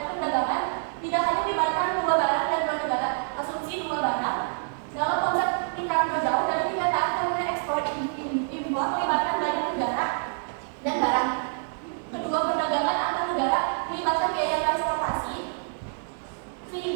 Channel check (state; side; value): silent; left; digital silence